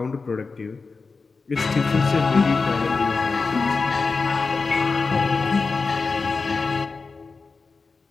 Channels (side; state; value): right; quieter; 4.4 dB